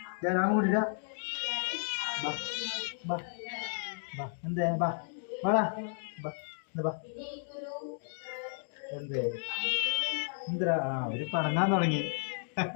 ഞാൻ കൂട്ടിട്ട എന്തേ ബാ വാടാ ബാ എന്തേ എന്തിനാ? അവര് പണങ്ങാൻ തുടങ്ങി.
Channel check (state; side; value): silent; right; digital silence